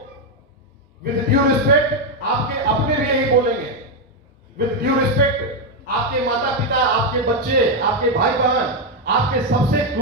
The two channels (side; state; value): both; normal; correlation 0.04